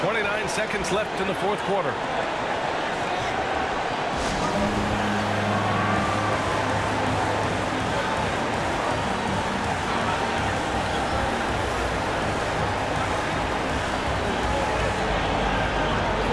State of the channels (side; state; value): both; identical; correlation 1.00